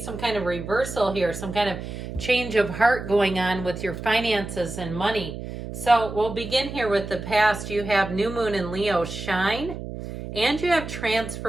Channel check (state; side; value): noise; right; hum, 9 dB below the sound